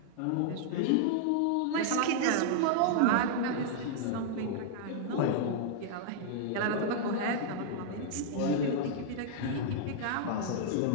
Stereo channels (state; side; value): different; both; correlation -0.01